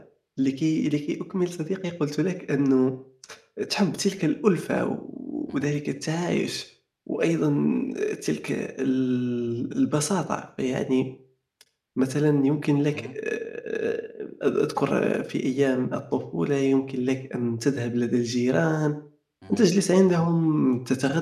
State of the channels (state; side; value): identical; both; correlation 1.00